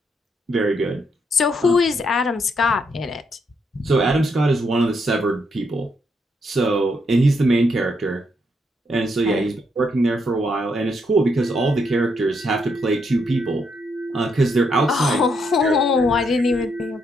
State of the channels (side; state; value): both; normal; correlation 0.77